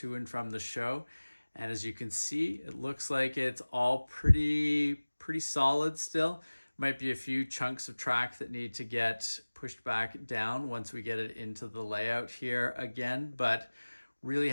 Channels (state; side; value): inverted; both; correlation -1.00